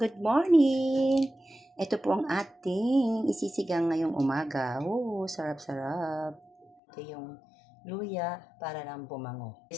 morning! Ito po ang ating isisigang ngayong umaga. Oh, sarap-sarap. Ito yung luya para lang bumango.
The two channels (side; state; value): right; drops out; at 6.8 s